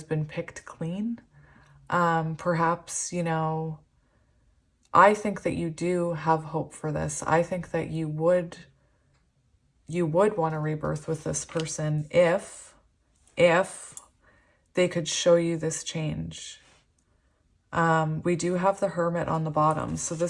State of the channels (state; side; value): identical; both; correlation 1.00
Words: been picked clean. Perhaps, you know, I think that you do have hope for this. I think that you would want to rebirth with this person if they could show you this change. We do have the Hermit on the bottom. So